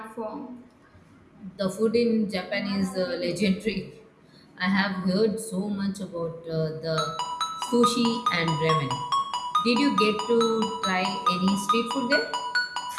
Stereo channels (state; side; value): identical; both; correlation 1.00